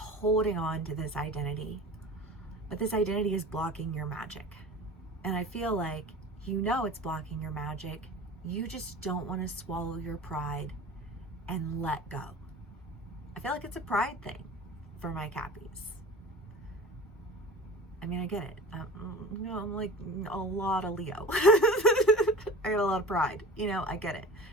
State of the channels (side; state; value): both; normal; correlation 0.38